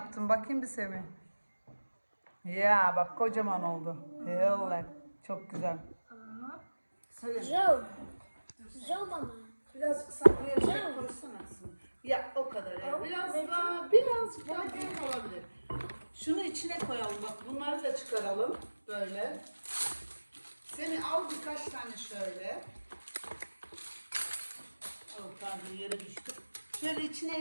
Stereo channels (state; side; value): inverted; both; correlation -1.00